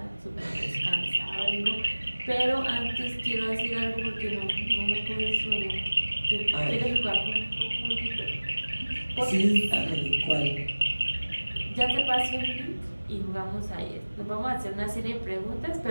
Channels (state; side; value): inverted; both; correlation -1.00